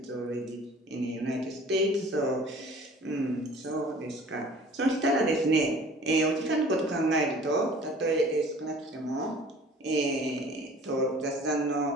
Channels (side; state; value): both; normal; correlation 0.48